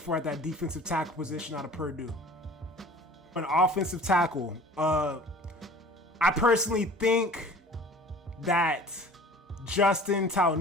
at that defensive tackle position out of Purdue. An offensive tackle, I personally think that Justin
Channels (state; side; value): normal; both; correlation 0.45